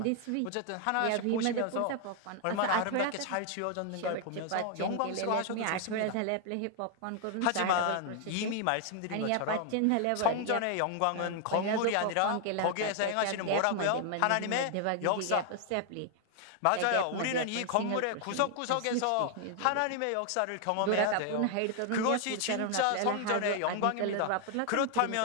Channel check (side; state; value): both; different; correlation 0.00